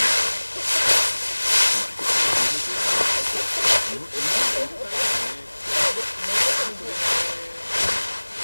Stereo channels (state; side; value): inverted; both; correlation -1.00